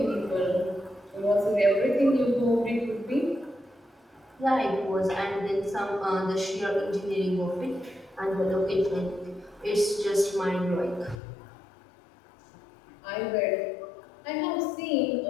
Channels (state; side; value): drops out; right; at 11.2 s